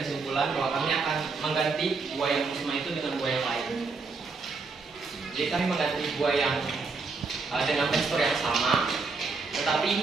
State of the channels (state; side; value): quieter; left; 4.3 dB